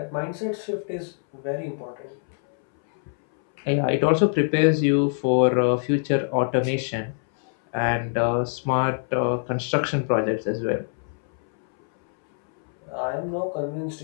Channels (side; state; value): right; silent; 62 dB below the other